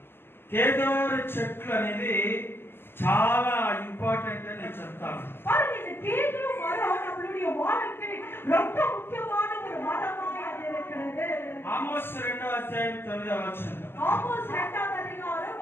కేదోరు చెట్లు అనేది చాలా ఇంపార్టెంట్ అని నేను చెప్తాను. பாருங்க இந்த கேதுரு மரம் நம்மளுடைய வாழ்க்கை ரொம்ப முக்கியமான ஒரு மரமாய் அது இருக்கிறது. ఆమోస్ 2వ అధ్యాయం 9వ వచనం. ஆமோஸ் 2வது அதிகாரம்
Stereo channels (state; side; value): late; right; 0.11 ms